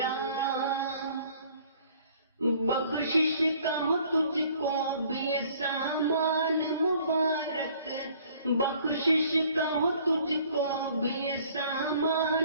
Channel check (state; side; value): inverted; both; correlation -0.57